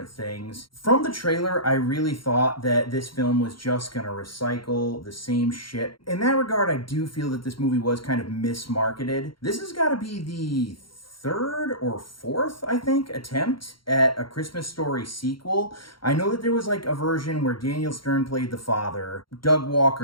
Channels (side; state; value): right; late; 0.73 ms